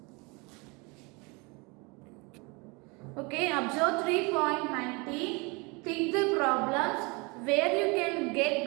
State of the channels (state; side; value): quieter; left; 28.4 dB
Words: Okay, observe 3.90. Think the problems where you can get